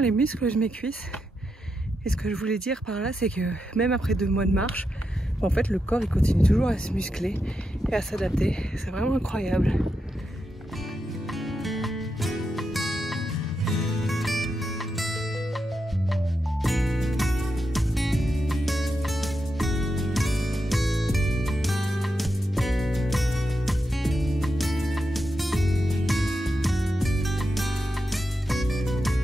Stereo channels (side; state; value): both; normal; correlation 0.86